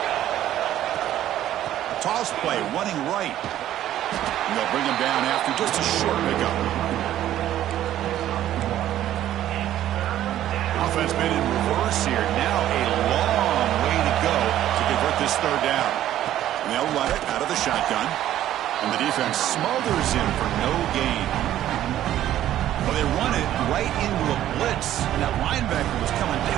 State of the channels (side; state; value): left; quieter; 12.5 dB